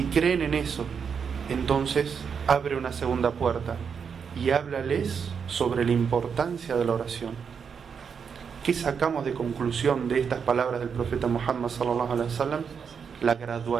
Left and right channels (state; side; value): quieter; left; 6.6 dB